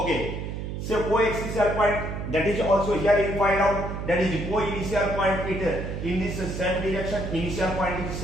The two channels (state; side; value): noise; right; hum, 5 dB below the sound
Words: so co-axial point, that is also here you find out, that is co-initial point, it in this same direction, initial point is